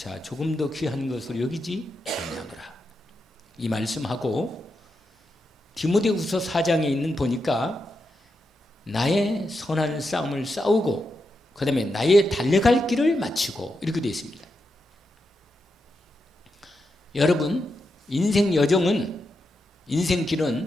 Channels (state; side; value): normal; both; correlation 0.86